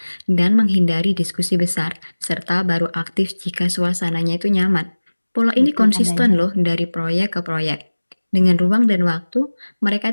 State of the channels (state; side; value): inverted; both; correlation -1.00